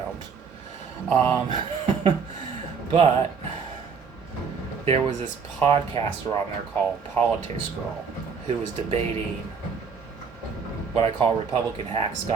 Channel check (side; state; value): left; quieter; 5.8 dB